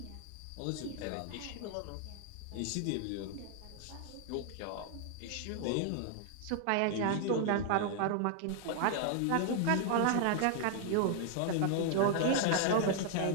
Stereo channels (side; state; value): both; different; correlation 0.00